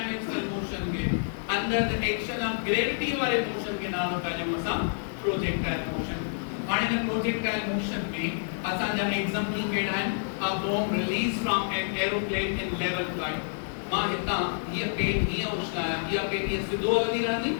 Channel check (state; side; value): silent; right; digital silence